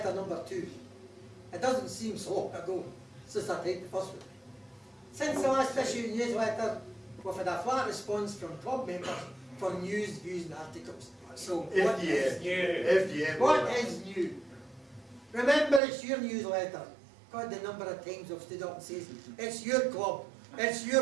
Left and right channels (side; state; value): left; drops out; at 15.8 s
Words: number 2. It doesn't seem so long ago since I typed the first one. Since the last issue of newsletter, we've had a flat response from club members for news, views and articles. So what is new? What is new? Remember, it's your newsletter. God, the number of times I've stood up and says, it's your club, it's